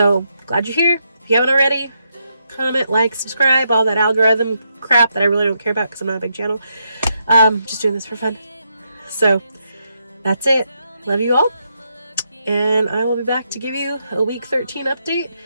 glad you're here. If you haven't already, comment, like, subscribe, all that algorithm crap that I really don't care about because I'm not a big channel. Just doing this for fun. So, that's it. Love you all. And I will be back to give you a week 13 update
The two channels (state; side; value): inverted; both; correlation -0.80